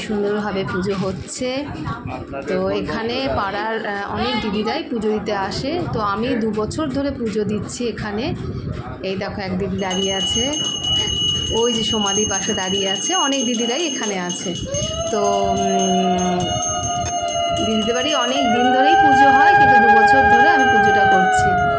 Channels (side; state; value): both; identical; correlation 1.00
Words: সুন্দরভাবে পুজো হচ্ছে। তো এখানে পাড়ার অনেক দিদিরাই পুজো দিতে আসে, তো আমি 2 বছর ধরে পুজো দিচ্ছি এখানে। এই দেখো এক দিদি দাঁড়িয়ে আছে, ওই যে সমাধি পাশে দাঁড়িয়ে আছে, অনেক দিদিরাই এখানে আছে। তো দিদিদের বাড়ি অনেক দিন ধরেই পুজো হয়, কিন্তু 2 বছর ধরে আমি পুজোটা করছি।